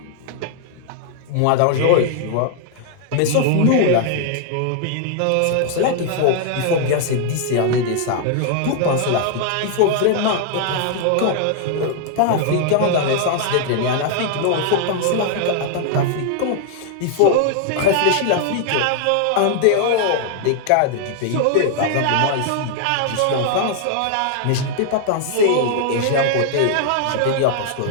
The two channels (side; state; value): both; different; correlation 0.00